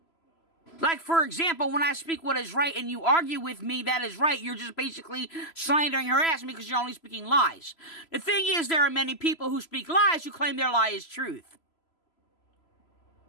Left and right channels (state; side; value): late; right; 3.0 ms